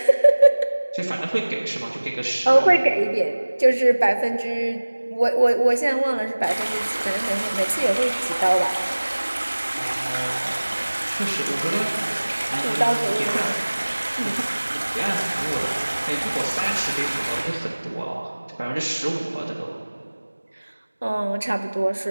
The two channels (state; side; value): inverted; both; correlation -1.00